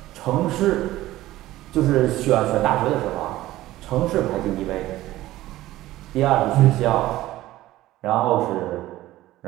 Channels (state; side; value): quieter; left; 15.9 dB